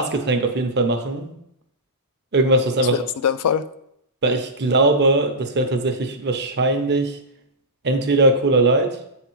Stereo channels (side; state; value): both; normal; correlation -0.15